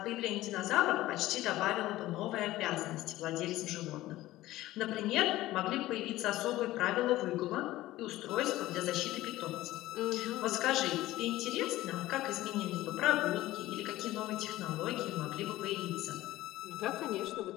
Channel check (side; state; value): right; quieter; 16.3 dB